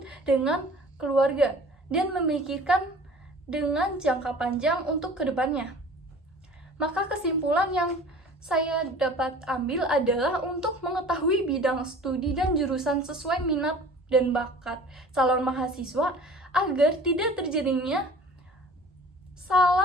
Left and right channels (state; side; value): normal; both; correlation 0.45